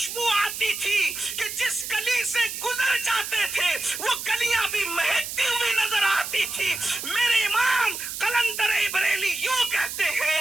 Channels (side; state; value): right; noise; hiss, 7 dB below the sound